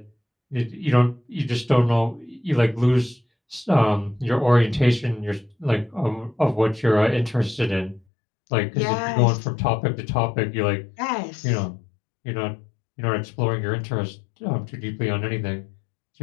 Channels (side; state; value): right; drops out; at 8.0 s